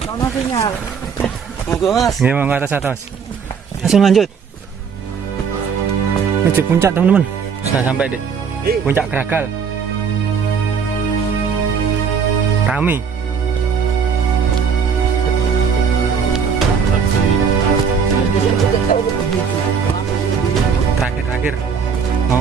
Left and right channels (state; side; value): quieter; left; 6.3 dB